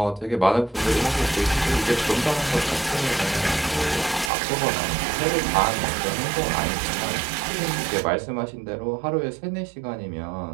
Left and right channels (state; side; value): drops out; left; at 4.3 s